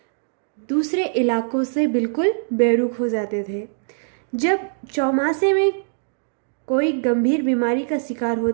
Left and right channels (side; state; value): left; silent; digital silence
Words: दूसरे इलाकों से बिल्कुल बेरुख हो जाते थे। जब चौमासे में कोई गंभीर बीमारी का शिकार